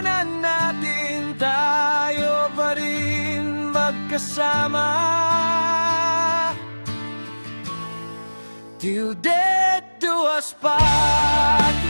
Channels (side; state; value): both; inverted; correlation -1.00